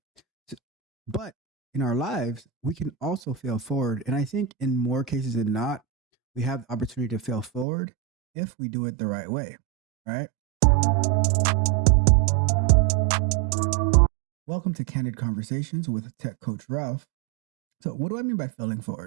S- But in our lives, we can also fail forward. And I think in more cases than not, we have the opportunity to fail forward if we do it the right way, right? Welcome to Candid Conversations with Tech Coach Ralph. So, what do I mean by failing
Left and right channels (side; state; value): left; drops out; at 7.7 s